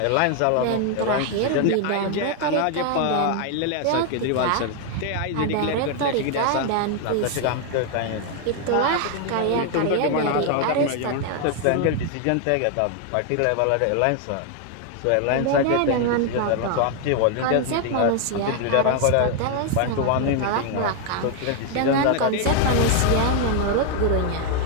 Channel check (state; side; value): different; both; correlation 0.00